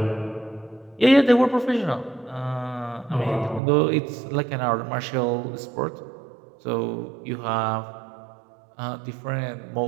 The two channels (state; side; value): drops out; left; at 3.6 s